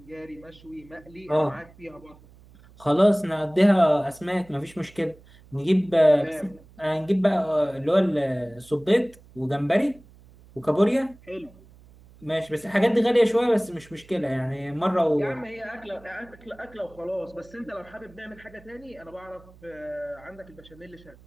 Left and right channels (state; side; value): noise; right; hum, 24 dB below the sound